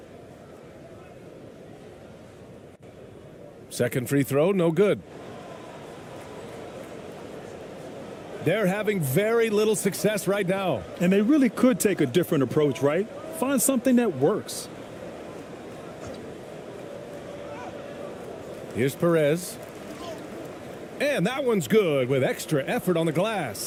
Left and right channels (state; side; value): identical; both; correlation 1.00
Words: Second free throw, no good. They're having very little success right now. And they really could take a different approach, right? Find something that works. Here's Perez. And that one's good with extra effort on the